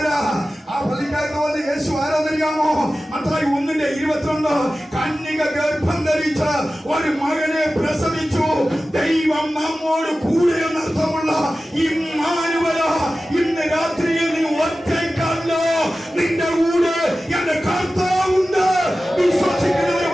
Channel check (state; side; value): normal; both; correlation 0.95